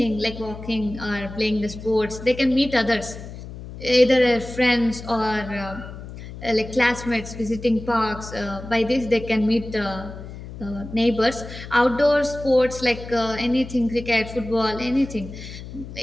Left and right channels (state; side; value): noise; left; hum, 12 dB below the sound